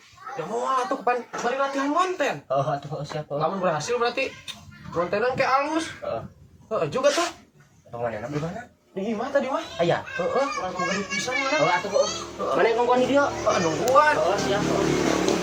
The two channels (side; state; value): both; identical; correlation 1.00